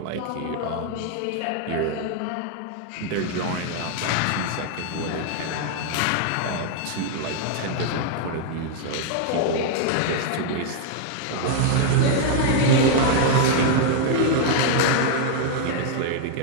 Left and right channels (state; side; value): different; both; correlation 0.00